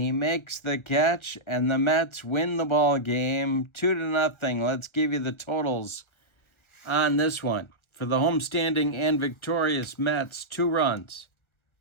makes the catch, and the Mets win the ball game 2-0. Let's give you the totals on this one. For the homestanding and victorious Mets, 2 runs.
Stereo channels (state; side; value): late; right; 1.4 ms